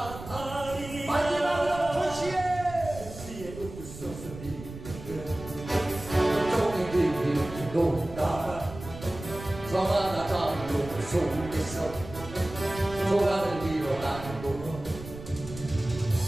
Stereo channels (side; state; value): right; noise; rumble, 13 dB below the sound